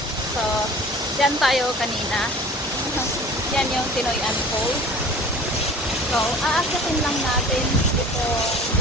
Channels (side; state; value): both; normal; correlation 0.43